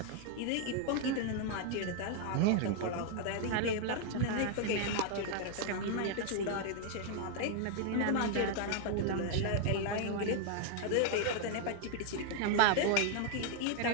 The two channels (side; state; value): both; different; correlation 0.00